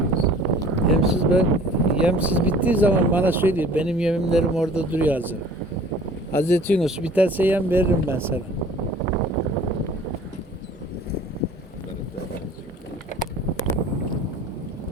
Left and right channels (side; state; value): both; normal; correlation 0.48